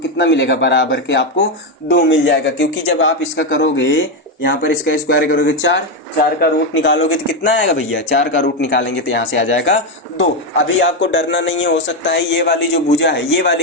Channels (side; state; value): both; normal; correlation 0.08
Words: मिलेगा, बराबर के आपको 2 मिल जाएगा, क्योंकि जब आप इसका करोगे, यहाँ पर इसका स्क्वायर करोगे 4 का रूट निकालोगे तो कितना आएगा भैया, 4 का रूट निकालेंगे तो यहाँ से आ जाएगा 2। अभी आपको डरना नहीं है, हो सकता है ये वाली जो भुजा है, ये